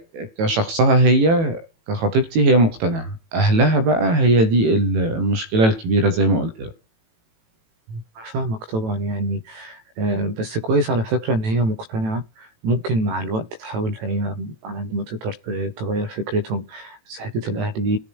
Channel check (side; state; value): left; late; 18 ms